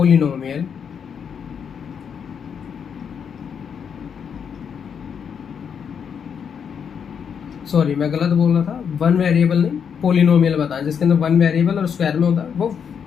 sorry, मैं गलत बोल रहा था, वन वेरिएबल नहीं, पोलिनोमियल बताएं। जिसके अंदर वन वेरिएबल और स्क्वायर में होता है वो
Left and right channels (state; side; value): quieter; right; 7.2 dB